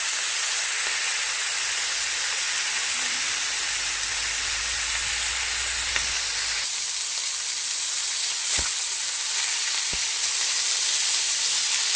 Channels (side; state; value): both; identical; correlation 1.00